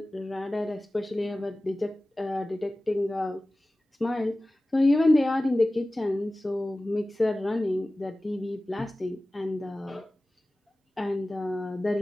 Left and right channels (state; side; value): normal; both; correlation 0.97